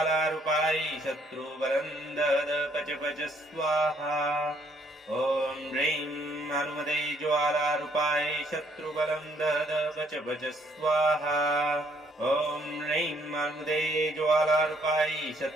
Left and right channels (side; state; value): both; normal; correlation 0.67